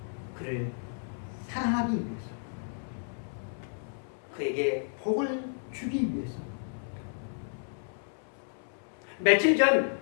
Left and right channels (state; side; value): silent; right; 56 dB below the other